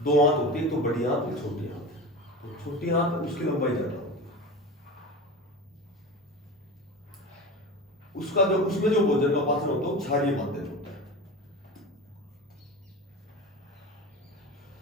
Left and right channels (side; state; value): both; normal; correlation 0.30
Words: दो आंत होती है, तो बड़ी आंत और छोटी आंत। तो छोटी आंत उसकी लंबाई ज्यादा होती है, उसका जो उसमें जो भोजन का पाचन होता है वो क्षारीय माध्यम होता है।